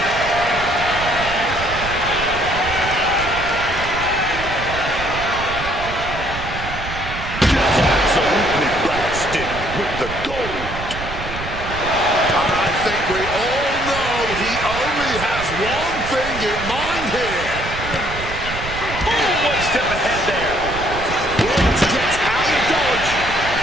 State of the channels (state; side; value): noise; right; rumble, 9 dB below the sound